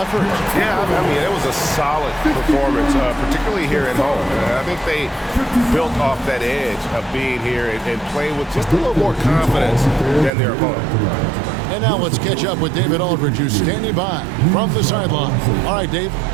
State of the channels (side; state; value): left; drops out; at 10.3 s